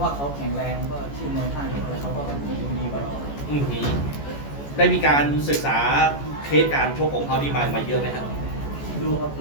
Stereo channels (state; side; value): late; right; 14 ms